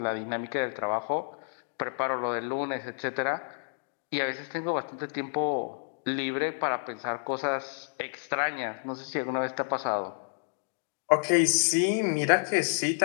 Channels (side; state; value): right; silent; digital silence